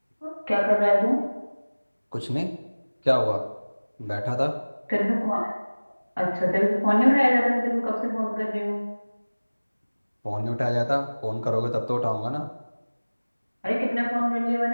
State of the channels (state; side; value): inverted; both; correlation -1.00